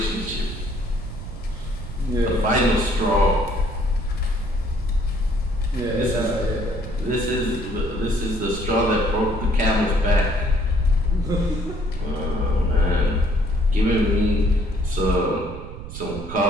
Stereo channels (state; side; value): noise; right; rumble, 10 dB below the sound